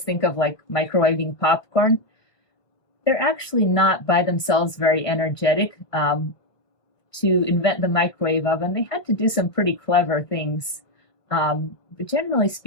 think of like microwaving popcorn. They're actually not by themselves very energetic. To invent the microwave oven, they had to do some pretty clever things. But generally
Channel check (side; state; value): right; late; 1.8 ms